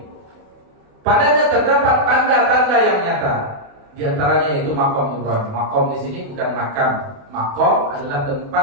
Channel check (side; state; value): left; late; 28 ms